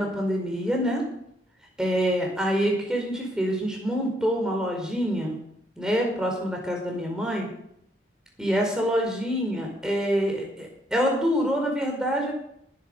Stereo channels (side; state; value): both; normal; correlation 0.72